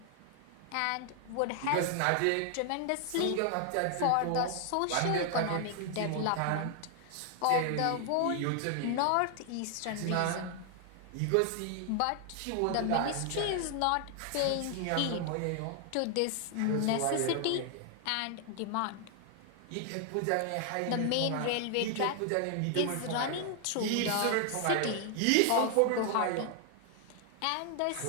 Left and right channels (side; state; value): both; different; correlation 0.00